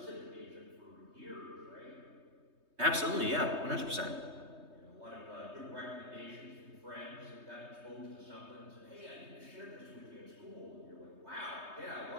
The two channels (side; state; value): left; late; 3.2 ms